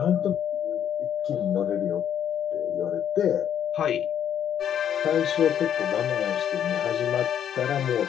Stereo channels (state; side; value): quieter; right; 9.5 dB